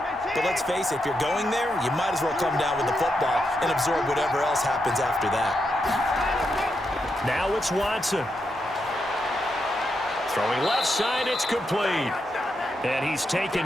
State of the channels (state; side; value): normal; both; correlation 0.83